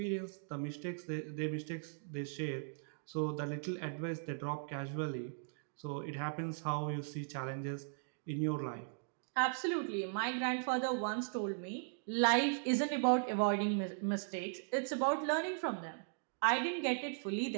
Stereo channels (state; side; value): silent; left; digital silence